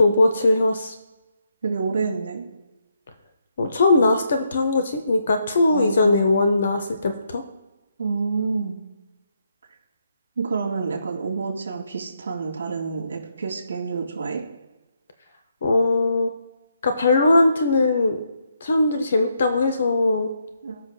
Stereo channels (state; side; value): inverted; both; correlation -0.78